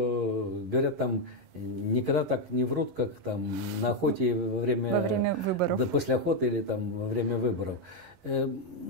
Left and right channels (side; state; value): left; late; 11 ms